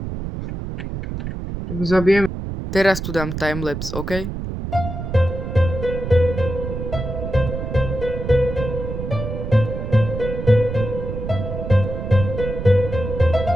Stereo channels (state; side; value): noise; right; rumble, 5 dB below the sound